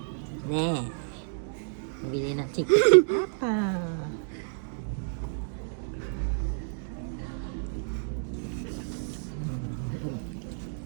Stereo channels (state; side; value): silent; left; digital silence